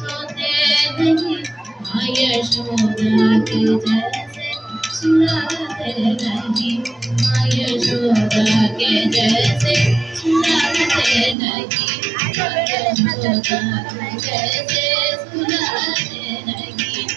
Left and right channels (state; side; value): drops out; left; at 11.4 s